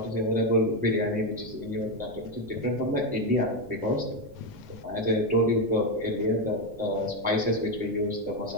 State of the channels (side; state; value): left; noise; rumble, 21 dB below the sound